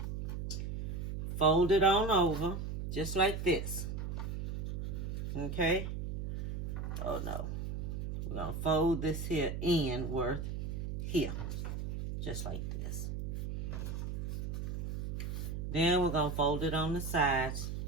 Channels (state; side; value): noise; right; hum, 3 dB below the sound